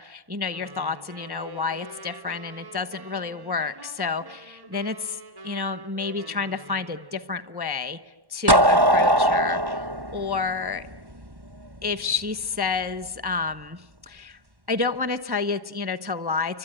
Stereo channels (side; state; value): left; late; 1.1 ms